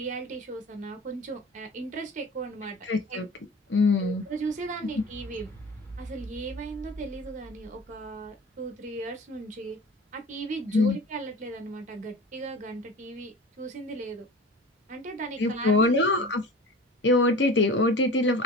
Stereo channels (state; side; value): normal; both; correlation 0.38